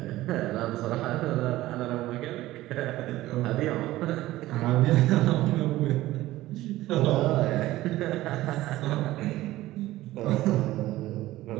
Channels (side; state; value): left; quieter; 16.4 dB